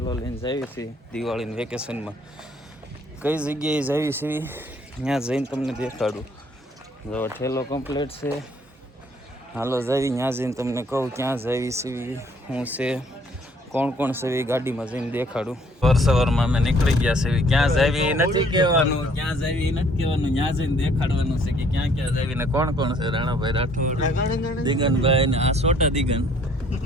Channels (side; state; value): both; normal; correlation 0.61